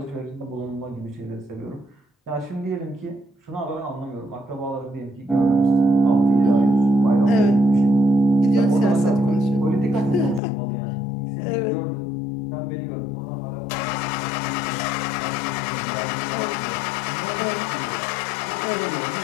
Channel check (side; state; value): right; drops out; at 10.4 s